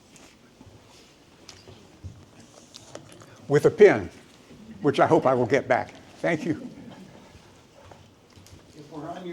with a pen, which I hope I will get back. Thank you. If we're on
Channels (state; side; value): identical; both; correlation 1.00